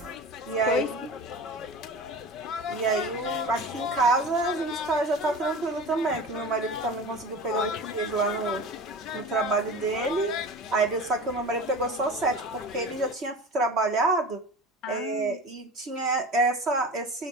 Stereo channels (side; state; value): both; normal; correlation 0.34